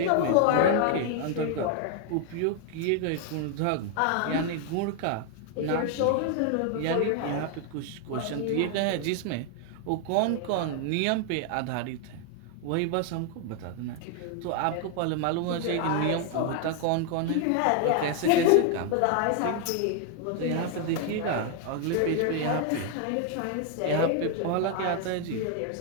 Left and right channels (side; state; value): both; different; correlation 0.00